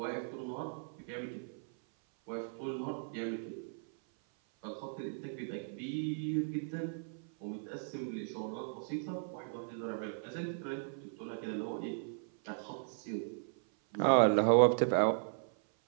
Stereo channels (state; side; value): silent; left; 53 dB below the other